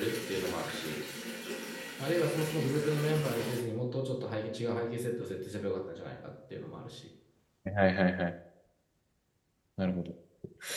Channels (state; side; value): identical; both; correlation 1.00